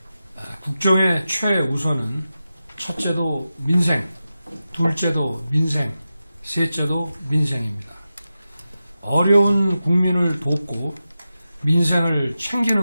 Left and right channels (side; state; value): both; inverted; correlation -0.92